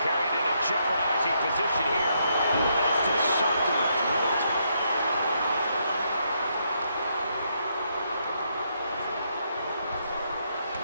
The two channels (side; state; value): both; inverted; correlation -0.76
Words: Carried in a jeopardizing position here. Nasty shot to the throat.